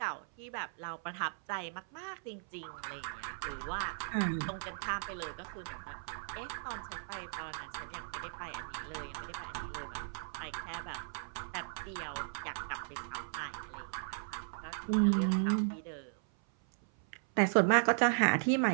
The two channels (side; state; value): left; silent; 53 dB below the other